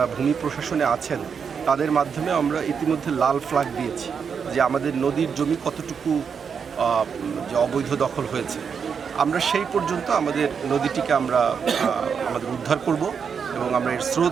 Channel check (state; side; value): quieter; left; 6.5 dB